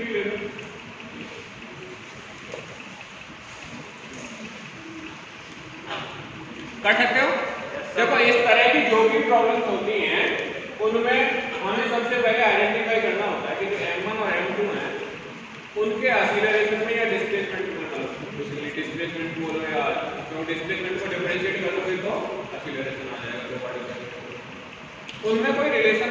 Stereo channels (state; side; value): identical; both; correlation 1.00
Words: ले लो। कर सकते हो? देखो इस तरह की जो भी प्रॉब्लम्स होती हैं उनमें हमें सबसे पहले आइडेंटिफाई करना होता है कि जो m1 और m2 हैं उनके एक्सीलरेशन में या डिस्प्लेसमेंट में बेसिकली डिस्प्लेसमेंट बोलो या तो डिस्प्लेसमेंट को डिफरेंशिएट करोगे तो एक्सीलरेशन आ जाएगा दो पार्टिकल। उनमें कोई रिलेशन